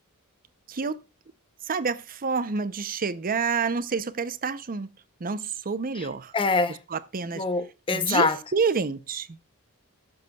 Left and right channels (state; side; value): normal; both; correlation 0.08